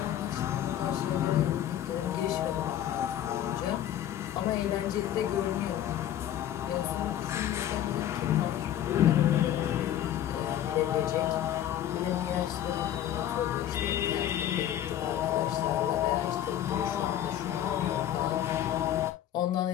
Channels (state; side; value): quieter; right; 11.4 dB